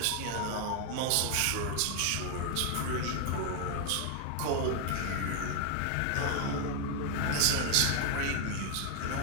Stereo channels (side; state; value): both; different; correlation 0.00